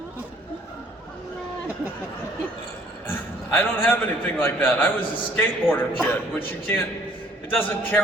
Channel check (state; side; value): normal; both; correlation 0.59